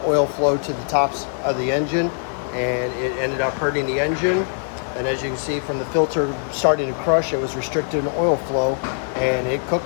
oil flow to the tops of the engine, and it ended up hurting the engine. And as you can see from the filter starting to crush, it was restricted in oil flow and it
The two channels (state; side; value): silent; right; 64 dB below the other